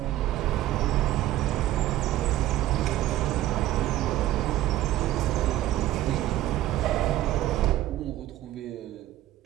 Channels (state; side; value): quieter; left; 14.3 dB